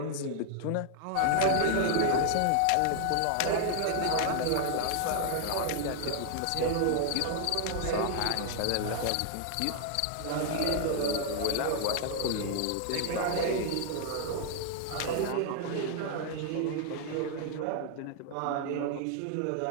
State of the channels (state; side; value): different; both; correlation 0.00